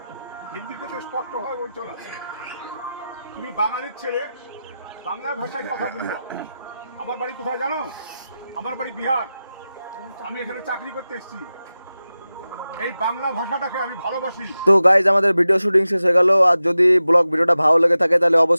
হিন্দিতে তো স্পষ্টভাবে বলছো না। তুমি বাঙালির ছেলে, বাংলা ভাষায় কথা বলবো। আমার বাড়ি কোথায় জানো? আমার বাড়ি বিহার। আমি এখানে চাকরি করতে এসেছি। এই বাংলা ভাষাটাকে আমি ভালোবাসি। তো গাইজ আমাদের ভিডিও শুটিং শেষ হয়ে গেল। আর যদি ব্লগ ভিডিওটা ভালো লেগে থাকে তাহলে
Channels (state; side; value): inverted; both; correlation -0.94